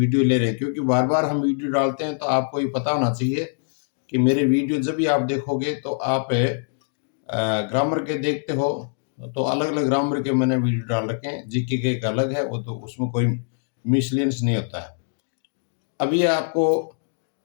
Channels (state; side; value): silent; right; digital silence